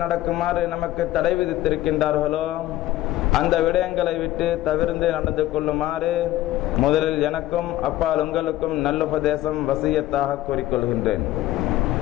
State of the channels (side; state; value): right; quieter; 15.0 dB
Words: நடக்குமாறு நமக்கு தடை விதித்திருக்கின்றார்களோ அந்த விடயங்களை விட்டு தவிர்த்து நடந்து கொள்ளுமாறு முதலில் எனக்கும் அப்பால் உங்களுக்கும் நல்லுபதேசம் வசியத்தாக கூறிக்கொள்கின்றேன்.